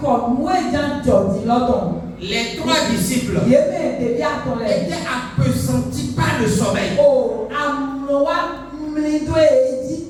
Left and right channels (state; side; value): identical; both; correlation 1.00